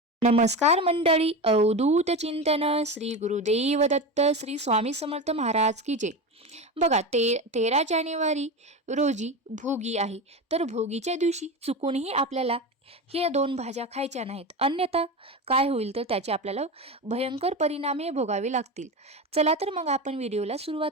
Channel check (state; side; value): normal; both; correlation 0.22